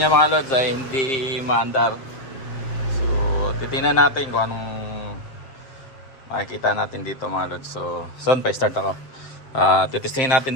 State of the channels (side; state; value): right; late; 7.6 ms